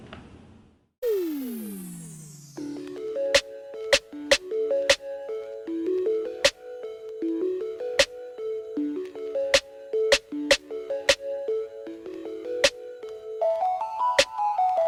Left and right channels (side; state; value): both; identical; correlation 1.00